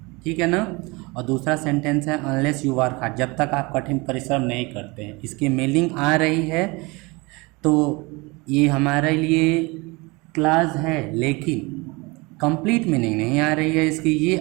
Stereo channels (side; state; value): left; quieter; 25.4 dB